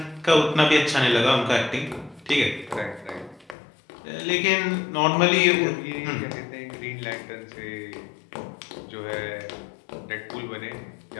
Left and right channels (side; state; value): right; drops out; at 3.6 s